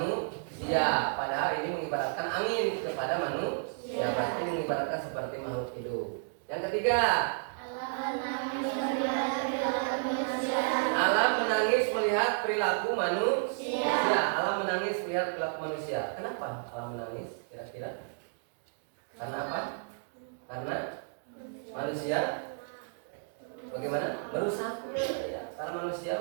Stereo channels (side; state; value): left; silent; digital silence